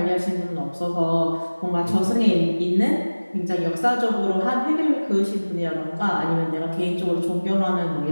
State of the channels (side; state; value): both; inverted; correlation -1.00